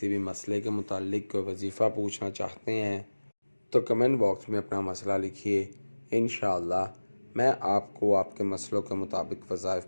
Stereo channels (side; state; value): both; inverted; correlation -1.00